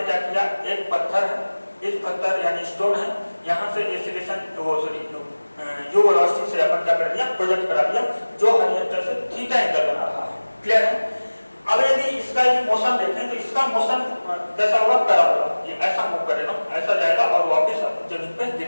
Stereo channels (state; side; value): inverted; both; correlation -1.00